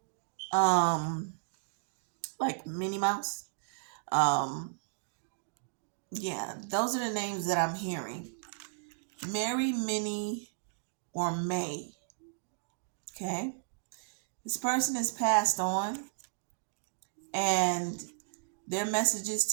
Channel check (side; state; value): left; silent; digital silence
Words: like Minnie Mouse. Um, yeah, those are the names that I'm hearing. Mary, Minnie, or May. Okay, this person has passed on, and their